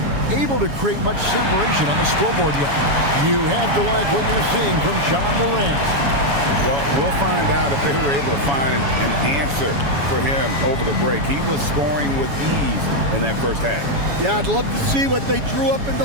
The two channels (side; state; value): left; late; 7.1 ms